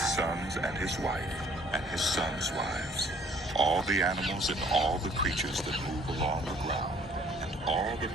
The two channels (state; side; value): normal; both; correlation 0.58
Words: sons and his wife, and his sons' wives, all the animals and all the creatures that move along the ground, and all the